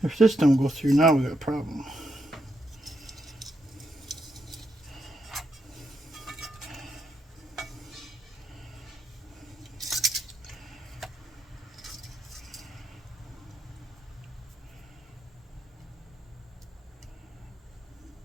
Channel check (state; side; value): normal; both; correlation 0.81